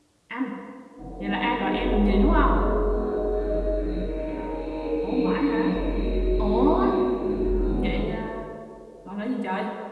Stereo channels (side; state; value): both; identical; correlation 1.00